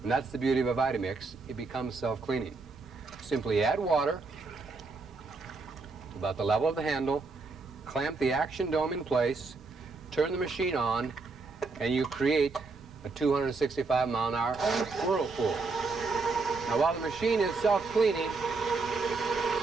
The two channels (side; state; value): left; quieter; 4.0 dB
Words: And that's the beauty of a VitaMix. It becomes self-cleaning. Simply add water about the level of the handle, clamp the action dome in place, turn the machine on, and you create a 265-mile-an-hour whirlpool. Now, while the machine is self-cleaning,